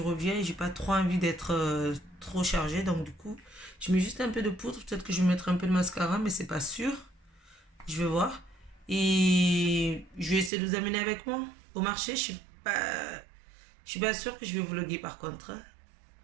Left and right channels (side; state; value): left; drops out; at 10.5 s